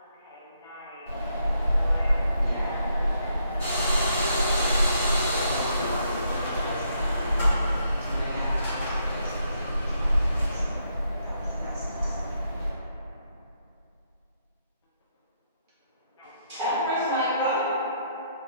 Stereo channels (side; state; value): both; inverted; correlation -0.76